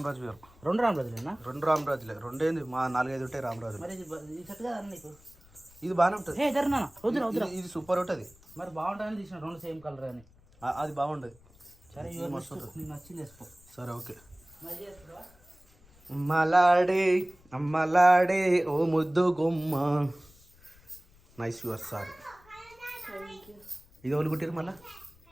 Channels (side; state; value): left; noise; rumble, 27 dB below the sound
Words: వేరు. 2 రామరాజులేనా? 2 రామరాజులే. 2 ఏంది మా 4-5 ఉంటాయి రామరాజు. మరి ఇది సెట్ కదా నీకు? ఇది బాగానే ఉంటుంది. ఇది సూపర్ ఉంటుంది. మరి బాగుంటుందని తీసిన 2 సేమ్ కలర్ అని. అది బాగుంటుంది. సరే నీకు నచ్చింది వేసుకో. సరే ఓకే. అమ్మలాడే అమ్మలాడే ఓ ముద్దు గుమ్మ. Nice your sir. ఇది ఎవరు కుట్టారు మళ్ళా?